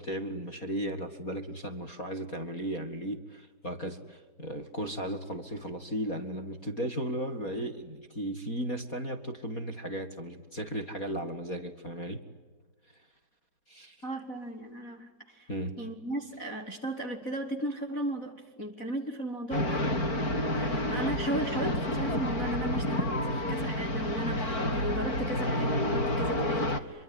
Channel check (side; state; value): right; late; 4.2 ms